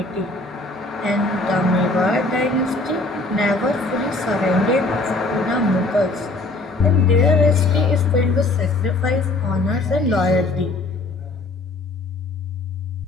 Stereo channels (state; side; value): quieter; right; 3.2 dB